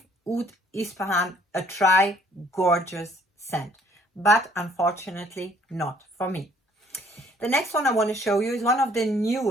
Oud Ispahan a try. Gorgeous scent, but unfortunately not for me. The next one I want to show you is one of the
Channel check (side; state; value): both; normal; correlation 0.61